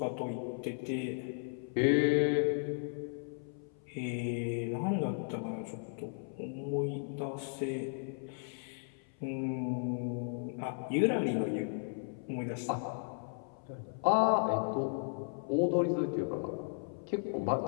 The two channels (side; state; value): right; silent; 54 dB below the other